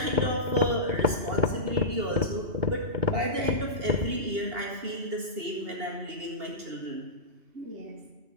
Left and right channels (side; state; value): left; late; 2.8 ms